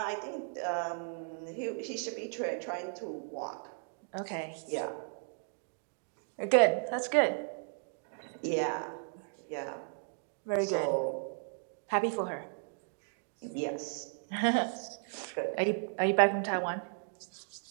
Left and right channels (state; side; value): silent; left; 54 dB below the other